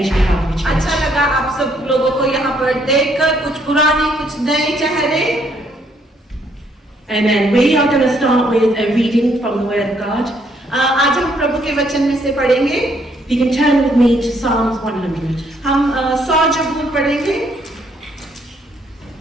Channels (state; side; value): normal; both; correlation 0.69